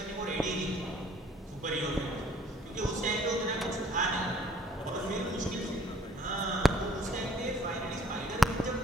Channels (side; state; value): both; normal; correlation 0.58